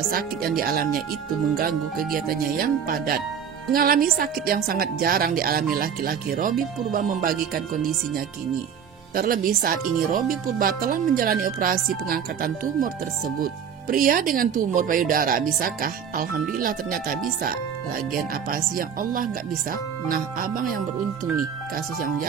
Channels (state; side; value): quieter; left; 7.6 dB